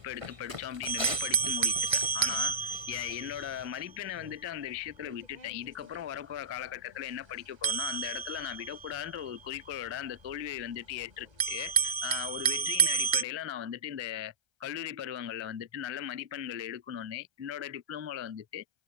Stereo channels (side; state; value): left; late; 1.3 ms